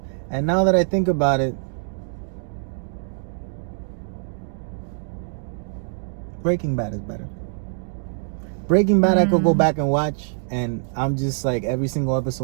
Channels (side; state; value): left; silent; digital silence